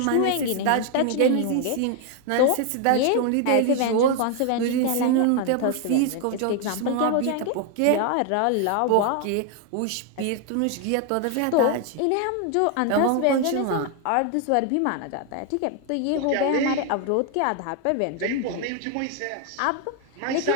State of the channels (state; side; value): different; both; correlation 0.00